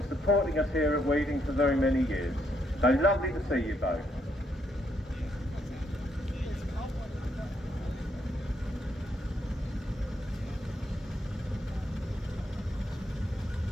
supporting us here at Weeting for very many years. So lovely to see you both.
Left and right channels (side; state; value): both; normal; correlation 0.75